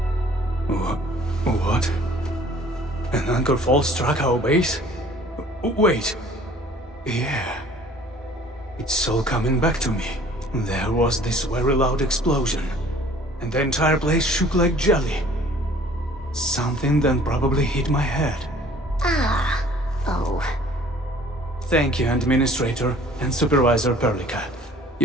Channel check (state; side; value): normal; both; correlation 0.53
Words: What? An anchor fall struck our base? Wait. Yeah. It's all coming back to me. There was this very loud explosion, and the entire place shook like jelly. Something then probably hit my head. Ah. Oh. Thank you, Administrator and Supervisor Perlica.